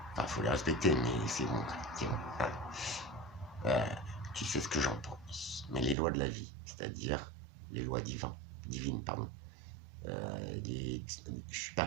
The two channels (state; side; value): drops out; left; at 6.0 s